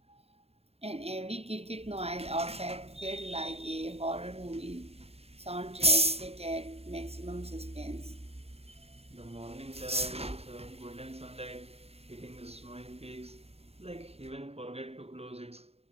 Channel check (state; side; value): late; left; 0.29 ms